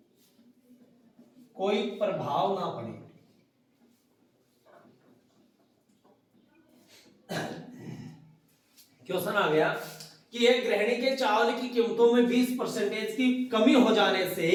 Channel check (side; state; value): both; identical; correlation 1.00